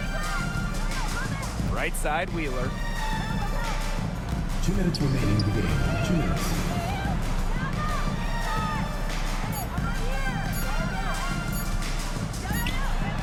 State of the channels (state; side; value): identical; both; correlation 1.00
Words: Right side Wheeler. 2 minutes remaining in the game. 2 minutes.